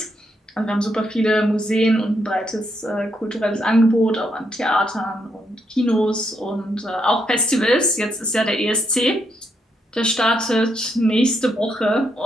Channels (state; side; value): normal; both; correlation 0.78